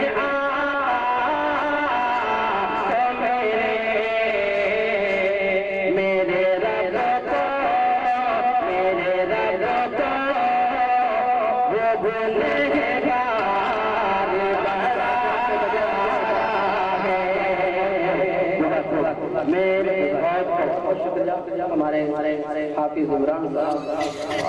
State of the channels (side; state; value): both; identical; correlation 1.00